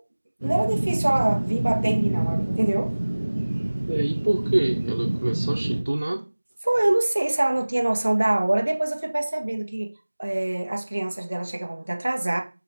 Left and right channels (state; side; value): inverted; both; correlation -1.00